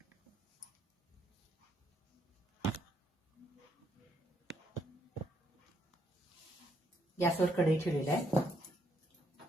गॅसवर कढई ठेवलेली आहे।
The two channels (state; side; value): normal; both; correlation 0.73